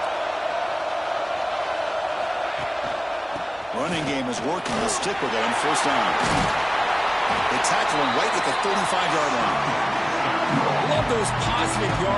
Running game is working. They'll stick with it on first down. They tackle him right at the 35-yard line. Love those positive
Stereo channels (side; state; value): both; identical; correlation 1.00